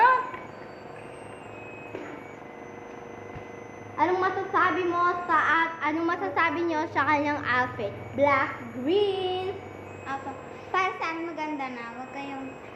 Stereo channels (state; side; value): identical; both; correlation 1.00